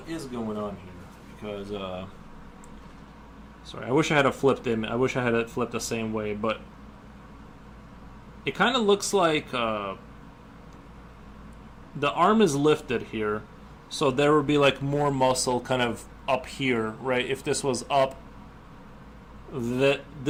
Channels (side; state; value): both; identical; correlation 1.00